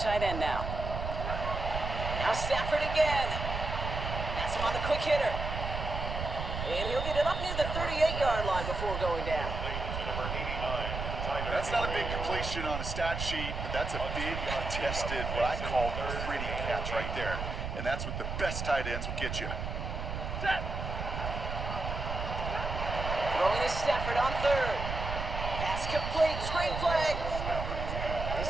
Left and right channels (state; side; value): noise; right; rumble, 4 dB below the sound